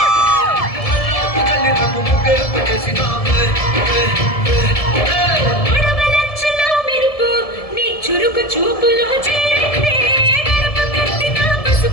కళ్ళాపు గల్లి నాకు ముగ్గే పెట్టేసినావే చురుకు చూపులో చేరిందే గడప కట్టిన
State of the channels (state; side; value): late; right; 1.7 ms